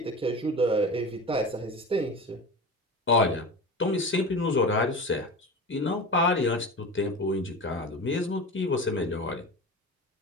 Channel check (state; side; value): normal; both; correlation 0.30